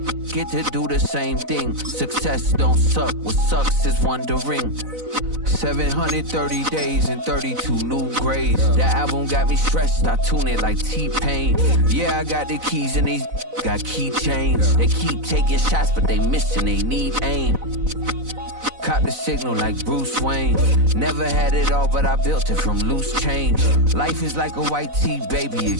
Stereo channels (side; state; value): left; late; 4.0 ms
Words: get to do the same thing. Success don't suck, what sucks is wondering. 730 days and 32 new grades. The album got me stressed, I tune it like T-Pain. Yeah, I got the keys and these got keychains. They keep taking shots, but they missing, they need aim. Caught the signal like Bruce Wayne. Never had it all, but I built it from loose change. Life is like a white tee, baby,